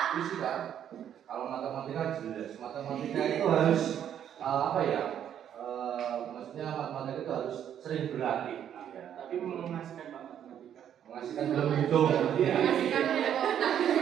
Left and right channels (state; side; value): quieter; left; 9.7 dB